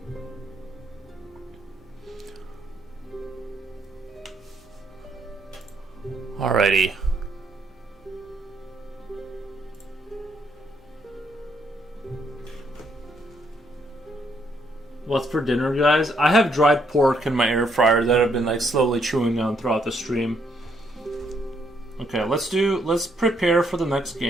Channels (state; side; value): normal; both; correlation 0.72